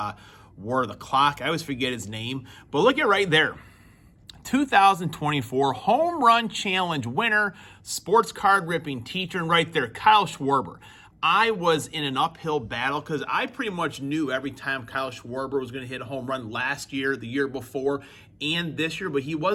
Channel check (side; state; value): both; identical; correlation 1.00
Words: wore the clock. I always forget his name, but look at right there. 2024 Home Run Challenge winner, Sports Card Ripping Teacher, and right there, Kyle Schwarber. I was in an uphill battle because I pretty much knew every time Kyle Schwarber was going to hit a home run last year, the year before, and this year, but he